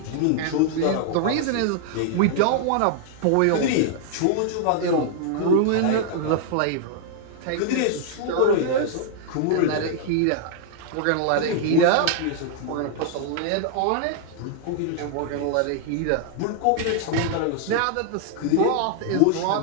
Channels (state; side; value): different; both; correlation -0.01